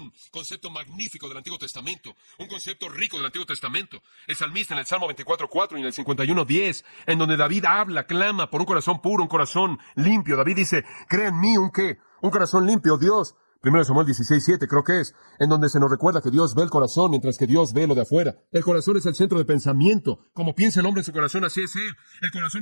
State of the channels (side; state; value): both; inverted; correlation -1.00